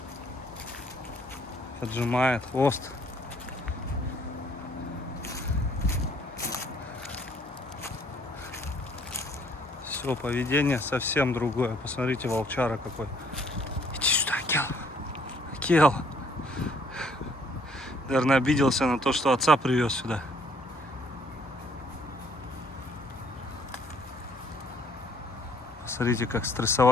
Поджимает хвост. Все, поведение совсем другое. Посмотрите, волчара какой. Иди сюда, Акел. Акел. Наверное, обиделся на то, что отца привез сюда. Смотрите, как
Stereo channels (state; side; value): normal; both; correlation 0.63